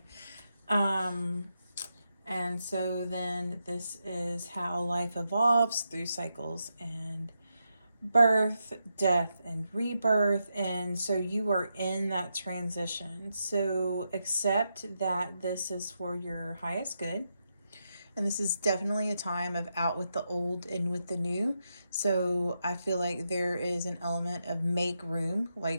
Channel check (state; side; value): inverted; both; correlation -0.85